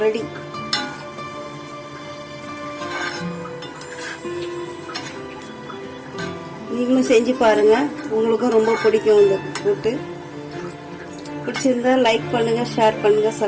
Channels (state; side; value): identical; both; correlation 1.00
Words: ரெடி. நீங்களும் செஞ்சு பாருங்க, உங்களுக்கும் ரொம்ப பிடிக்கும் இந்த கூட்டு. பிடிச்சிருந்தா லைக் பண்ணுங்க, ஷேர் பண்ணுங்க,